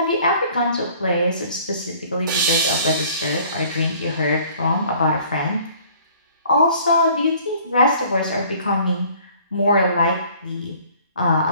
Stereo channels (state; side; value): inverted; both; correlation -0.53